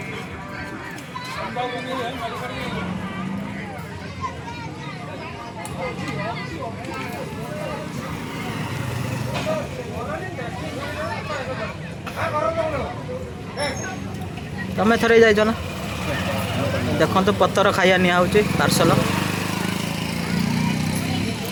तमें थरे जाइज ना देखो तो पत्थर खाइया निआउची पार्सल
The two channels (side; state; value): both; identical; correlation 1.00